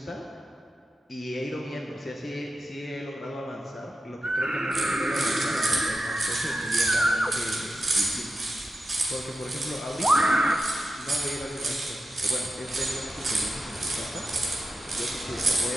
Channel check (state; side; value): normal; both; correlation 0.91